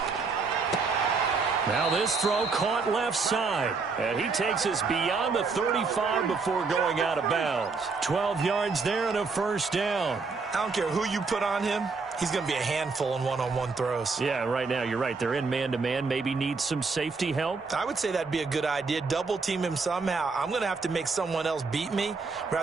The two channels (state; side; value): quieter; left; 4.5 dB